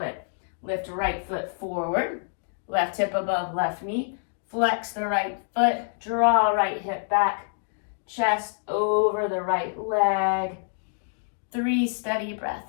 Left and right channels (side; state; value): right; silent; digital silence